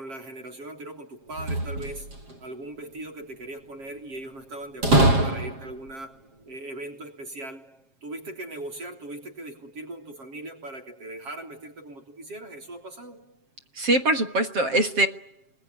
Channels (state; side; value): late; left; 7.4 ms